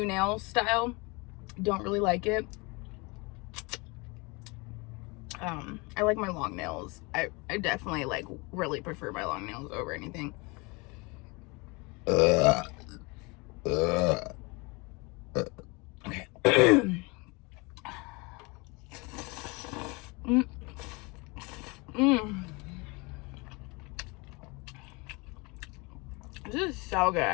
nail style. Don't really like it. I like my long nails. I definitely like really prefer my long nails over anything. Okay. This is so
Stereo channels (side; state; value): right; quieter; 27.3 dB